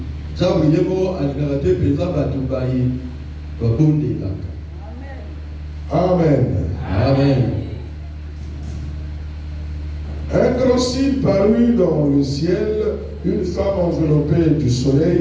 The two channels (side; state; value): both; identical; correlation 1.00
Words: Amen. Amen. Un grand signe parut dans le ciel, une femme enveloppée du